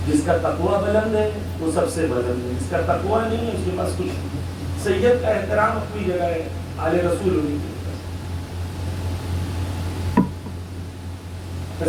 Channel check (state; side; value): identical; both; correlation 1.00